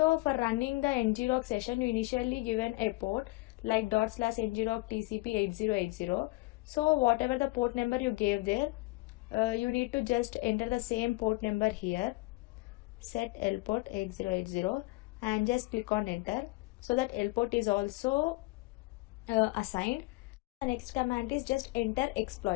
for running the ngrok session, you initially given a port like /ngrok tcp 8080. So whatever the port number you gave there, you need to just enter the same port number here, set L port 8080, and just click on enter, so that L port is also assigned. The next command is just enter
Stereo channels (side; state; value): right; quieter; 23.1 dB